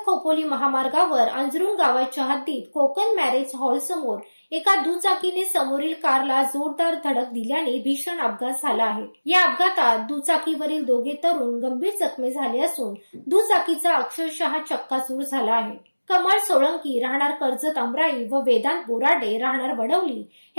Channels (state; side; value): inverted; both; correlation -1.00